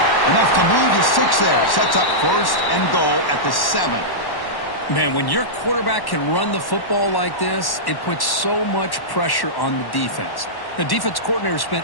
Enough to move to 6 there. Sets up 1st and goal at the 7. Man, when your quarterback can run the football like this, it puts so much pressure on the defense. The defense coordinator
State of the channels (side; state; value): right; late; 1.1 ms